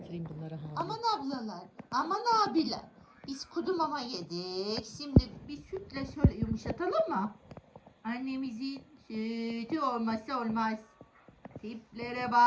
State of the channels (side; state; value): both; identical; correlation 1.00